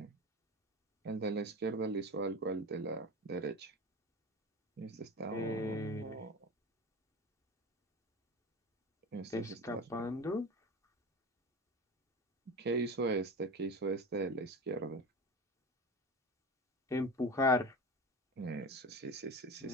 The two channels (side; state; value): both; normal; correlation 0.29